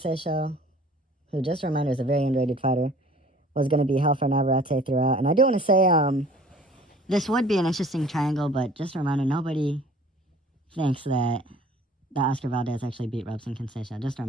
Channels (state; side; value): normal; both; correlation 0.50